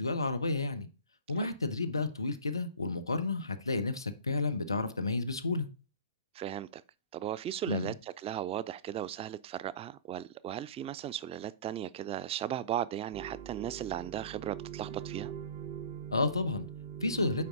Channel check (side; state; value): both; inverted; correlation -0.44